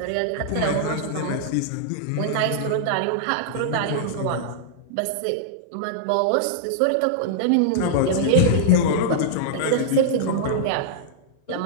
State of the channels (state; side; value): different; both; correlation -0.01